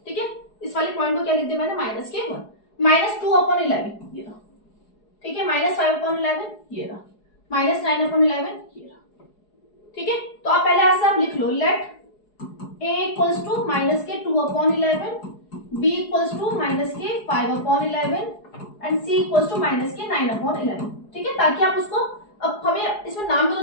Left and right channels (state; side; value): late; right; 4.8 ms